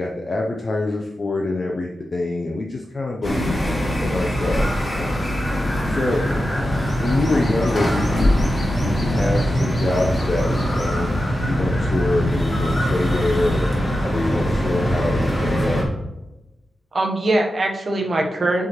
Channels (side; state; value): both; normal; correlation 0.91